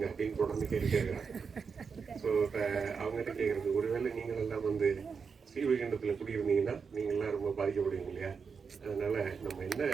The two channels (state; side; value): quieter; left; 5.7 dB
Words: அப்படின்னு தொடர்ந்து கேட்குறாங்க. ஸோ இப்போ அவங்ககிட்ட கேட்குறது, ஒருவேளை நீங்கள் எல்லாம் வந்து ஸ்ரீவைகுண்டத்தில் குடியிருந்தீங்கன்னா நீங்கள்லாம் ரொம்ப பாதிக்கப்படுவீங்க இல்லையா? அதனால நம்ம என்ன